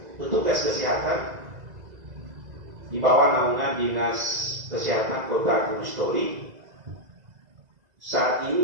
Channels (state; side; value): late; left; 2.0 ms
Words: petugas kesehatan di bawah naungan Dinas Kesehatan Kota Gunung Stoli saat